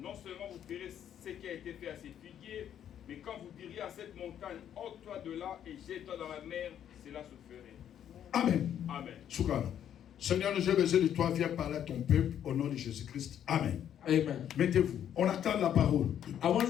seulement vous verrez ce qui a été fait à ces figuiers, mais quand vous diriez à cette montagne, ôte-toi de là et jette-toi dans la mer, cela se ferait. Amen. Amen. Shukran. Seigneur, j'ai besoin de toi, viens parler à ton peuple au nom de Jésus-Christ. Amen. Amen. Mettez-vous. On attend la parole. I want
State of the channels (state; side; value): quieter; right; 9.9 dB